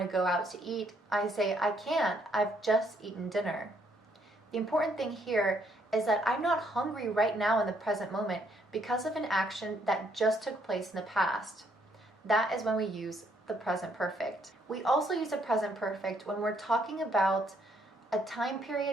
to go out to eat, I say I can't, I've just eaten dinner. The important thing here is that I'm not hungry right now in the present moment because of an action that just took place in the past. That is when we use the present perfect. We also use the present perfect when we're talking about a time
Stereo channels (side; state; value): both; normal; correlation 0.70